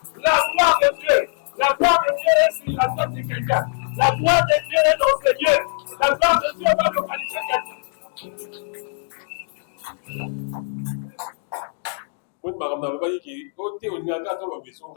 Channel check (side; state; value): right; silent; 64 dB below the other